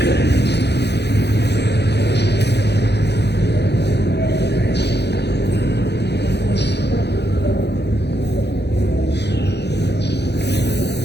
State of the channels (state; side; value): late; right; 0.49 ms